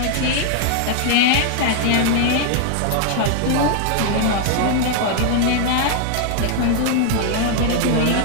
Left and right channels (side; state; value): both; different; correlation 0.00